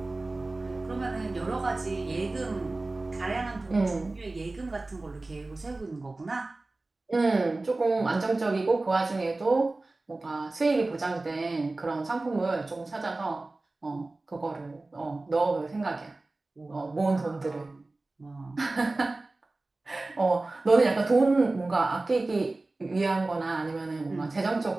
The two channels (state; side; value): quieter; left; 3.1 dB